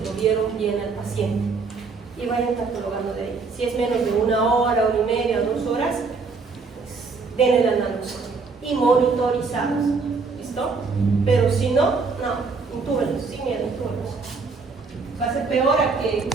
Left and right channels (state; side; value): quieter; left; 4.5 dB